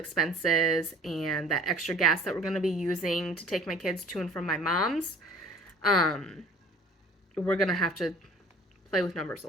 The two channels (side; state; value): both; normal; correlation 0.49